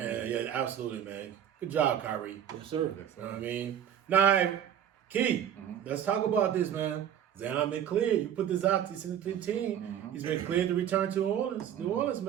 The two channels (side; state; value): left; quieter; 9.7 dB